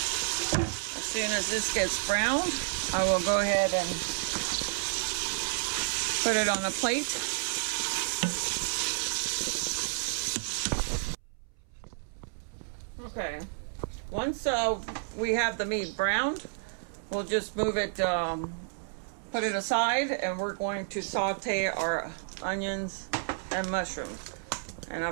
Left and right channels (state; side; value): silent; left; 57 dB below the other